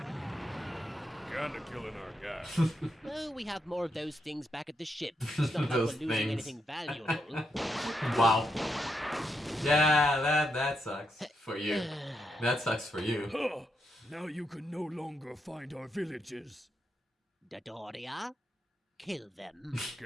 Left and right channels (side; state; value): both; normal; correlation 0.82